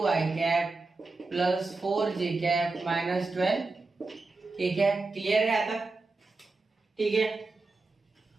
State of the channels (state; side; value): quieter; left; 3.6 dB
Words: cap plus 4j cap -12k cap. Clear है यहाँ तक, ठीक है।